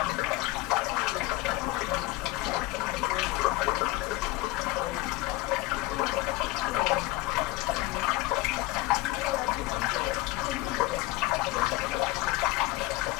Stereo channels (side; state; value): right; quieter; 18.8 dB